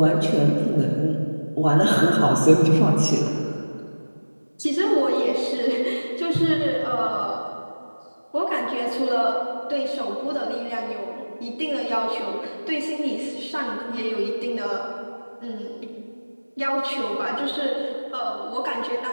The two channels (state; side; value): inverted; both; correlation -1.00